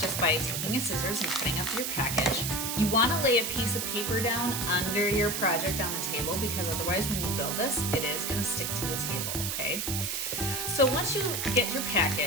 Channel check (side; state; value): right; noise; hiss, 2 dB below the sound